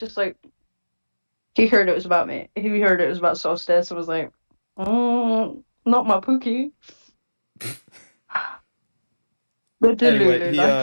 like, he heard it was about me. He heard it was about Solstice and was like, not my Pookie. The Anyway, Delulu life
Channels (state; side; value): inverted; both; correlation -1.00